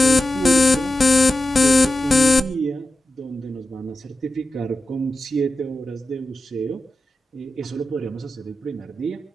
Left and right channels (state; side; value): normal; both; correlation 0.93